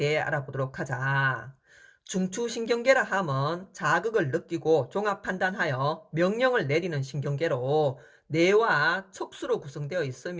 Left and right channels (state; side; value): identical; both; correlation 1.00